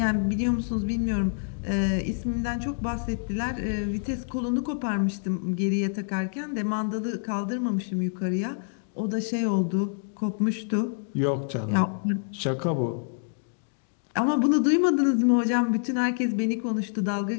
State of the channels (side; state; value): right; silent; digital silence